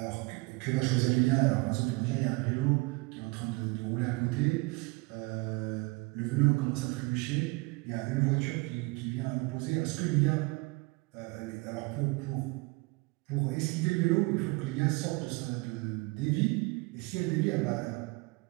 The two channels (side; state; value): left; quieter; 25.5 dB